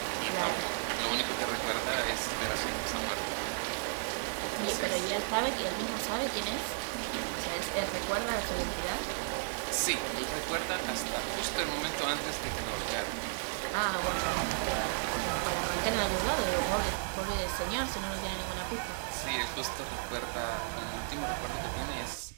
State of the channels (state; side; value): silent; left; digital silence